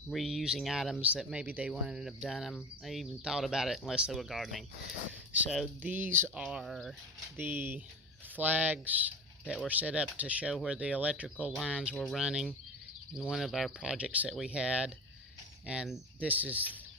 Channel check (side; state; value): both; normal; correlation 0.30